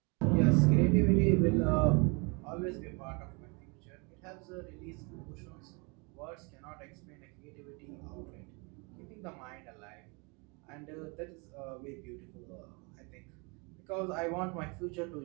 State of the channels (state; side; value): quieter; left; 31.0 dB